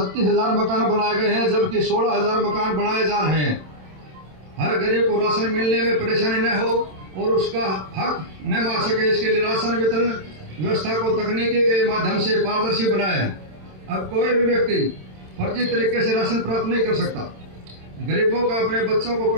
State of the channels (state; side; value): late; left; 27 ms